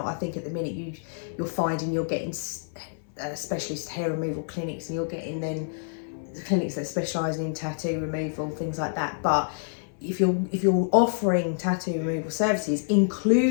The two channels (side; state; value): right; silent; 60 dB below the other